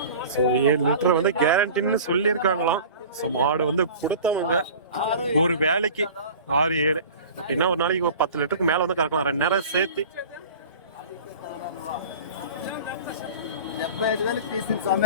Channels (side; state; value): both; inverted; correlation -0.40